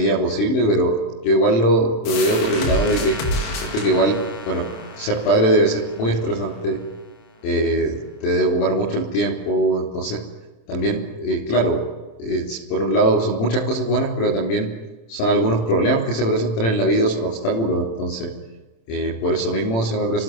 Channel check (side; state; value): right; late; 27 ms